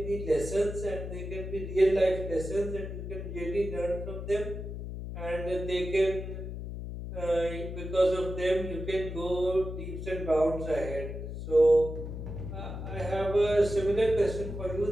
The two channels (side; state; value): left; noise; hum, 7 dB below the sound